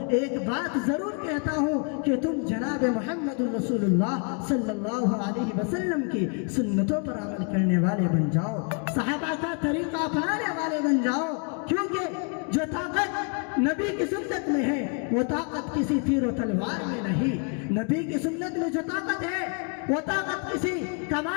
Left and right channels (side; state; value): right; quieter; 38.1 dB